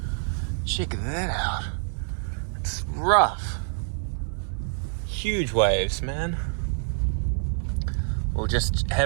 Check that out. It's rough. Huge waves, man. We'll just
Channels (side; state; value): left; silent; digital silence